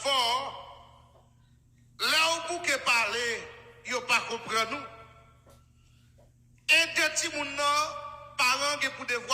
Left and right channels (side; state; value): both; identical; correlation 1.00